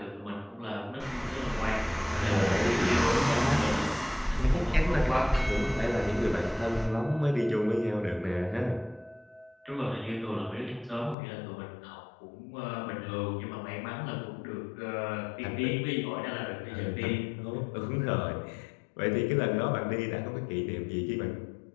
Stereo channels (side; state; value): right; drops out; at 11.2 s